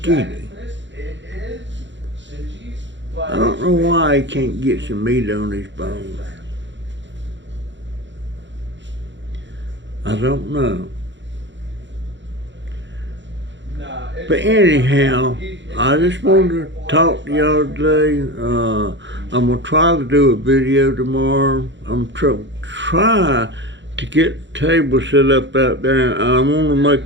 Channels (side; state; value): left; late; 0.53 ms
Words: I don't know why he can't get some meat on his bones. I don't know. But anyhow, I just wanted to talk to y'all today. I'm going to try to do a video tomorrow. I'm try to get the table set up out there. I want to